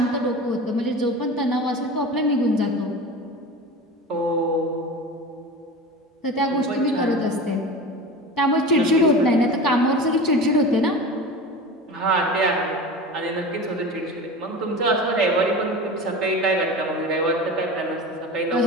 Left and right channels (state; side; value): normal; both; correlation 0.31